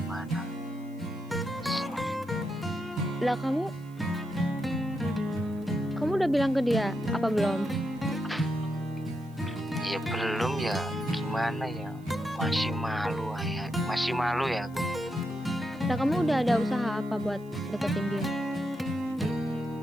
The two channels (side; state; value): right; noise; hiss, 29 dB below the sound